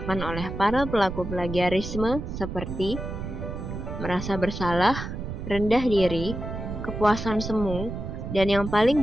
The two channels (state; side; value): noise; right; rumble, 6 dB below the sound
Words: oleh para pelaku plagiarisme seperti merasa bersalah, rendah diri, kepuasan semu, dan yang